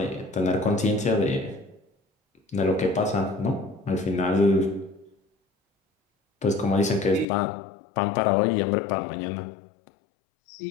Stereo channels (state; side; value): drops out; right; at 7.2 s